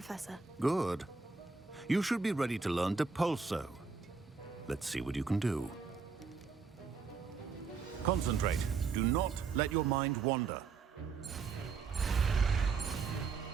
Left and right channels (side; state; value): left; quieter; 5.1 dB